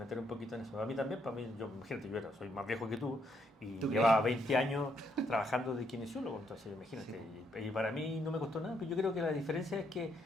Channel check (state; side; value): normal; both; correlation 0.74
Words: un poquito en eso. A mí también, para mí, imagínate, soy más viejo que tú y ¿Tú llevaba crees? 20 años trabajando de kinesiólogo, entonces imagínate. Sí. Y para mí no me costó nada, pero yo creo que la diferencia es que